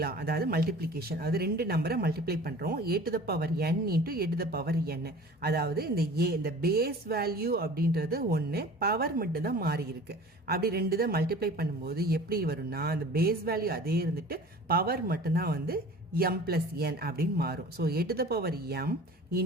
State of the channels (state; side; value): normal; both; correlation 0.43